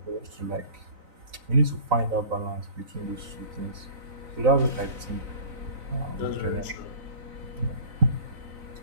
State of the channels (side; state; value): left; late; 3.9 ms